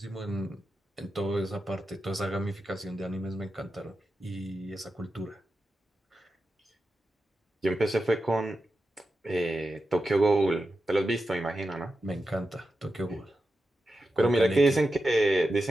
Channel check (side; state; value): both; normal; correlation 0.90